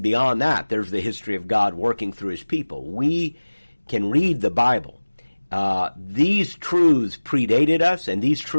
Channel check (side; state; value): both; inverted; correlation -1.00